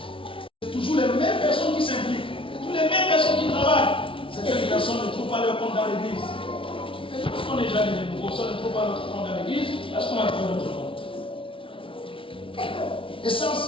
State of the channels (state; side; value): late; right; 0.25 ms